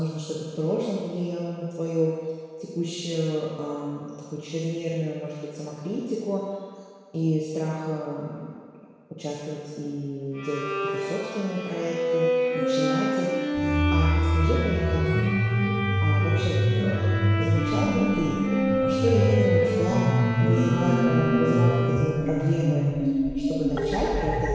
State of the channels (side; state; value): both; identical; correlation 1.00